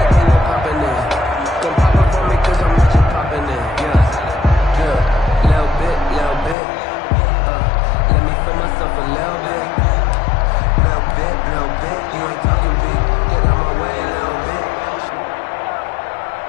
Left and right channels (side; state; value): right; drops out; at 6.6 s